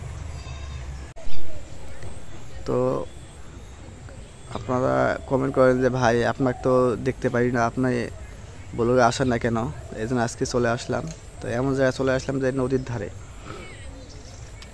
তো আপনারা কমেন্ট করেন যে ভাই আপনাকে তো দেখতে পারি না, আপনি ব্লগে আসেন না কেন? এই জন্য আজকে চলে আসলাম। তো এমন জায়গায় চলে আসলাম যে নদীর ধারে,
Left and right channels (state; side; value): identical; both; correlation 1.00